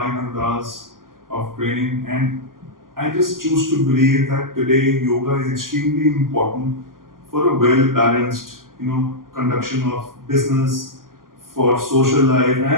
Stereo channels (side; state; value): left; late; 0.91 ms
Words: hours of training, and I just choose to believe that today yoga is extremely important for a well balanced, conduction of business, for social life,